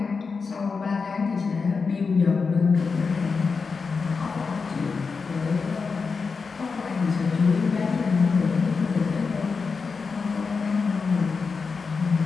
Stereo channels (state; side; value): quieter; right; 4.9 dB